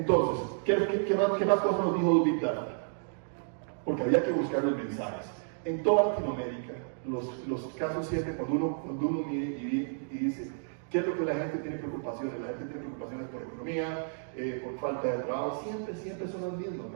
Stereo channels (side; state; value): left; silent; digital silence